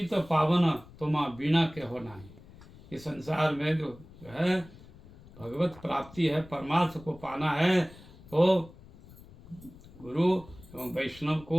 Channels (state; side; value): noise; left; rumble, 21 dB below the sound